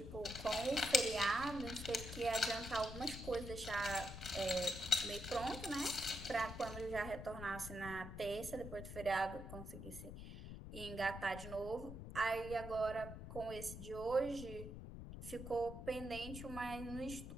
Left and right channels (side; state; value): left; noise; rumble, 9 dB below the sound